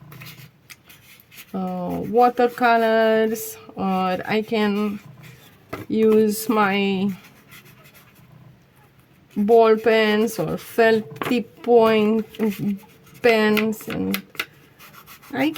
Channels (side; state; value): both; identical; correlation 1.00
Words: watercolors, or I can use my ball pens or felt tip point pens, and I